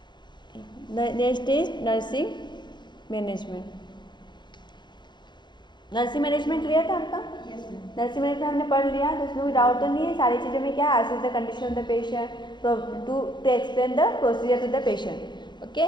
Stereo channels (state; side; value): late; right; 0.22 ms